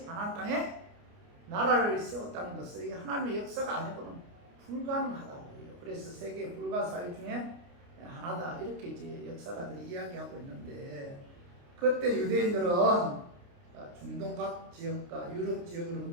가나안 땅에 나라를 세웠다는 것은 이게 하나님의 역사가 아니고는 불가능하다고 해요. 그래서 세계 불가사의 중에 하나다 이렇게 이제 역사가들이 이야기하고 있는데 그때 유대인들은 중동 각 지역과 유럽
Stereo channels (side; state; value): left; late; 29 ms